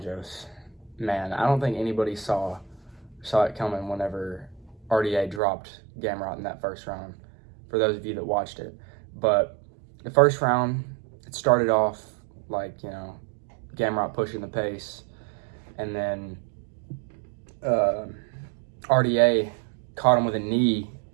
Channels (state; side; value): drops out; left; at 5.4 s